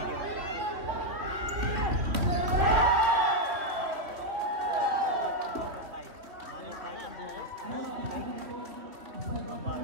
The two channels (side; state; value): left; late; 2.8 ms